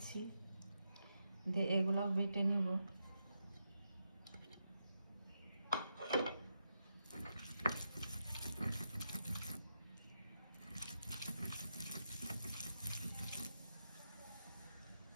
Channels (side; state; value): both; inverted; correlation -0.85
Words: দিয়ে এগুলাও বেটে নেব।